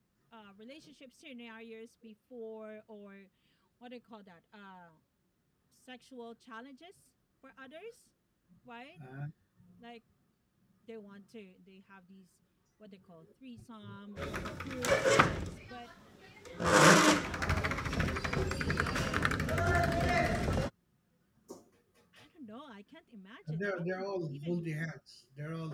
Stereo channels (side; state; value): both; identical; correlation 1.00